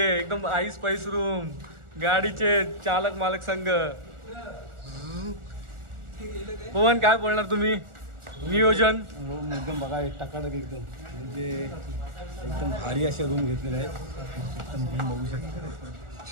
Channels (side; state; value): left; late; 1.4 ms